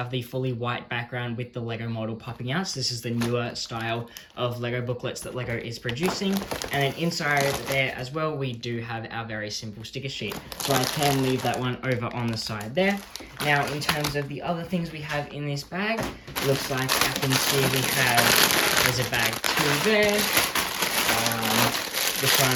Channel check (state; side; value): identical; both; correlation 1.00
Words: the fully white background with the Lego model popping out. So this is the newer style of Lego booklets that Lego is producing. And then inside there as well, we do have our very simple sticker sheet. So I can leave that one over on the side there. Now in terms of the other things we have in this bag, looks like I can see we have, there's a bag 2 there. This one